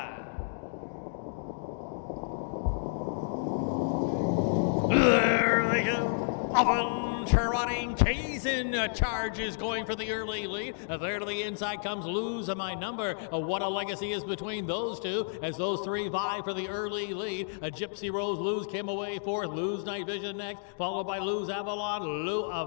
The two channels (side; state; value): right; silent; digital silence